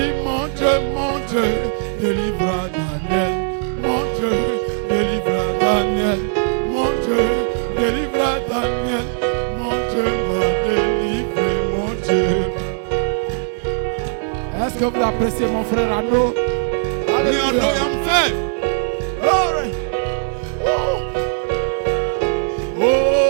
Est-ce que vous appréciez mon frère Arnaud? Alléluia. Glory.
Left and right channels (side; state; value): left; silent; digital silence